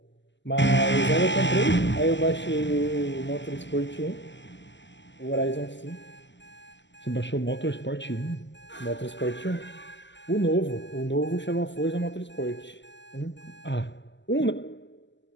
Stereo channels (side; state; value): right; late; 0.53 ms